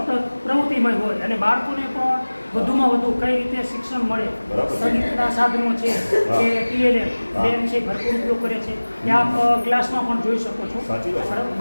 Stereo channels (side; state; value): both; inverted; correlation -1.00